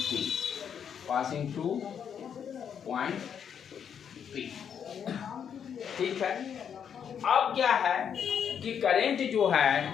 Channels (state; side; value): quieter; right; 8.0 dB